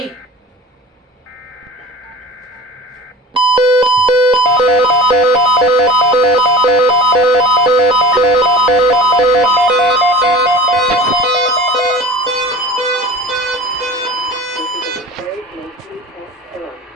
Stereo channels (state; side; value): normal; both; correlation 0.38